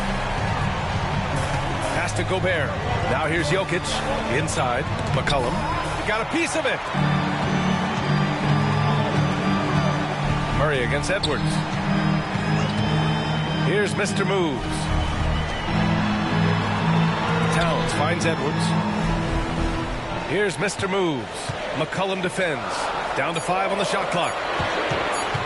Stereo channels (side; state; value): both; identical; correlation 1.00